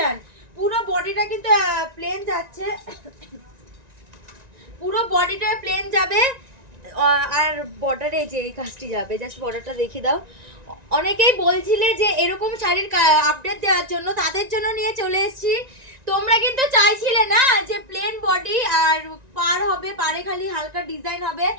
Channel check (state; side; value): late; left; 1.9 ms